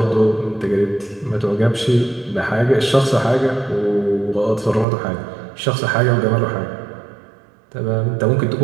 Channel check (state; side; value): drops out; left; at 4.9 s